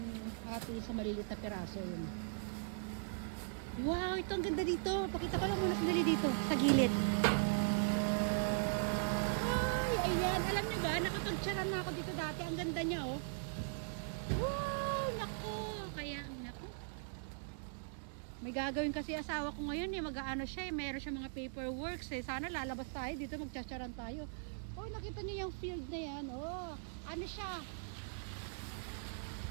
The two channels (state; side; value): silent; left; digital silence